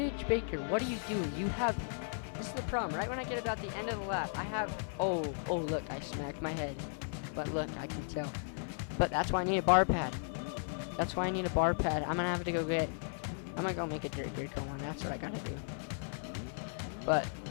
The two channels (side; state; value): right; silent; 54 dB below the other